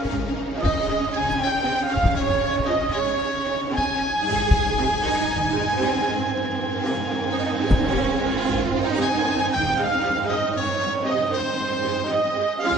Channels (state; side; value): normal; both; correlation 0.62